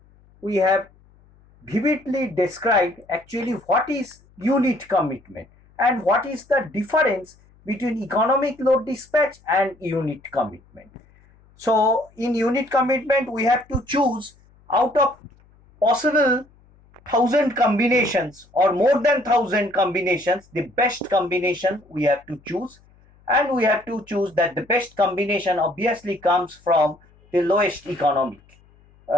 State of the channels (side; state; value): left; noise; hum, 30 dB below the sound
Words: we have vividly described actually what is unit commitment and what is the difference between economic load dispatch and unit commitment. So in unit commitment we have to choose out of possible 1,000 combinations or more than 1,000 combinations, the best combination we have to choose, and we have to choose that the best combination obviously comes from the lowest economic